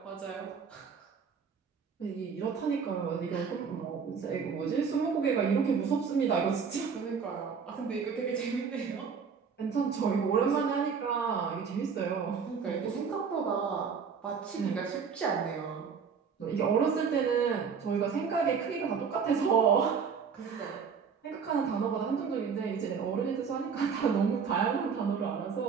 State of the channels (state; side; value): quieter; left; 6.1 dB